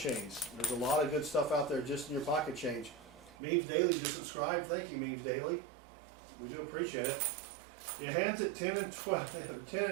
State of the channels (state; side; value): drops out; left; at 3.4 s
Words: There's a lot of good stuff out there just in your pocket change. Memes Daily, just subscribe. Thank you, Memes Daily. We do appreciate it. Your hands at 10 and 12, 10